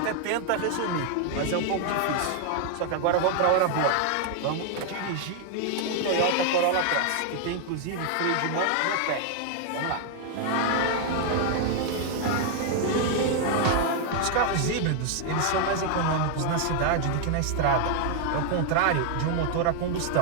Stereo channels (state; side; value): different; both; correlation 0.00